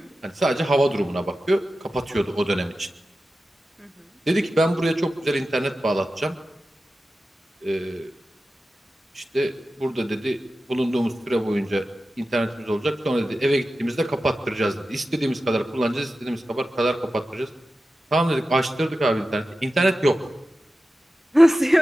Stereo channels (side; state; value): both; normal; correlation 0.93